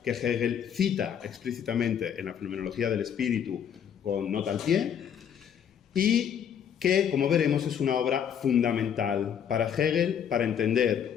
que Hegel cita explícitamente en la Fenomenología del Espíritu con nota al pie, y que, como veremos, es una obra fundamental para Hegel para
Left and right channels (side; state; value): right; quieter; 8.5 dB